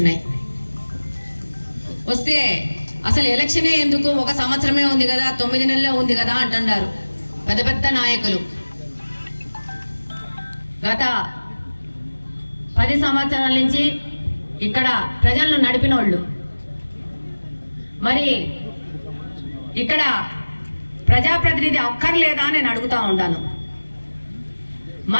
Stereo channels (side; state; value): both; inverted; correlation -1.00